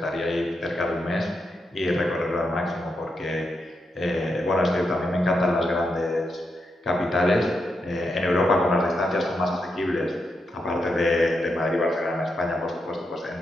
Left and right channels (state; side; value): normal; both; correlation 0.84